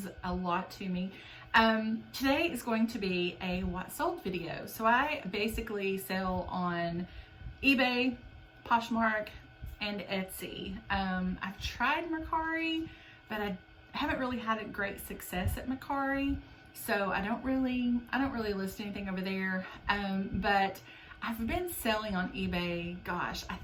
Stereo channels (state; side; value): identical; both; correlation 1.00